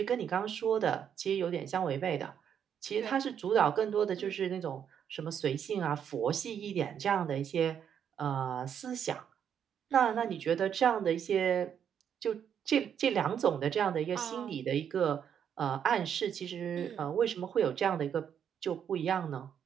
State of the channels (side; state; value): left; quieter; 8.4 dB